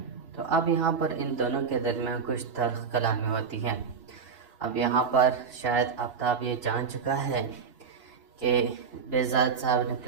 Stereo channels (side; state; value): left; quieter; 5.9 dB